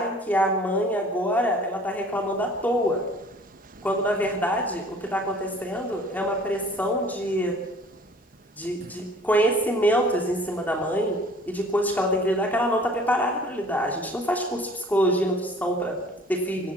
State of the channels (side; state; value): both; normal; correlation 0.51